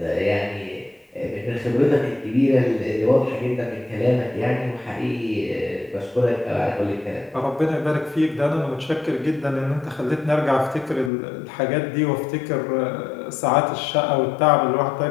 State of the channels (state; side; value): drops out; right; at 11.1 s